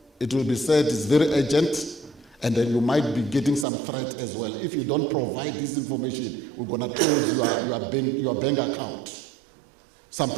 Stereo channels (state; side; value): drops out; left; at 3.7 s